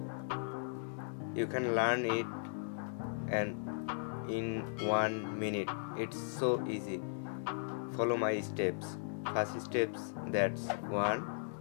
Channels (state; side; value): silent; right; digital silence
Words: You can learn it and in 1 minute. It's so easy. Follow my steps. First steps, that's 1.